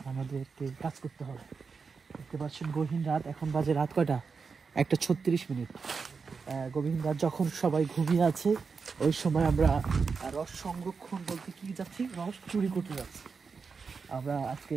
আমাদেরকে কাজ করতে হবে। দেখতে পাচ্ছেন গহীন রাত, এখন বাজে রাত কয়টা? 1:36। গভীর রাত যখন সবাই ঘুমিয়ে আছে ওই সময় আমরা রস সংরক্ষণ বলতে কি যাচ্ছি, রস চুরি করতে যাচ্ছি। আমরা আজকে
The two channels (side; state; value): left; quieter; 5.2 dB